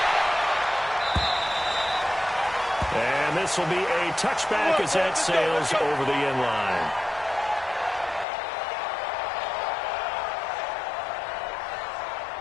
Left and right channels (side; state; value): right; drops out; at 8.2 s